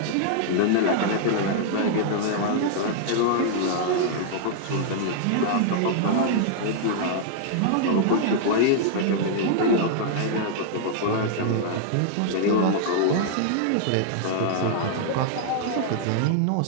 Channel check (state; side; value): different; both; correlation -0.01